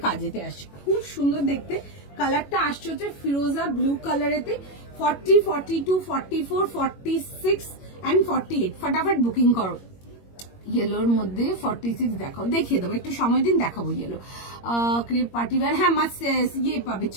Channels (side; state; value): right; late; 21 ms